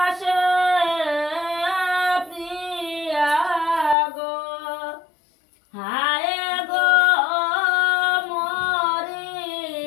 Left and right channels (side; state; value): right; drops out; at 4.0 s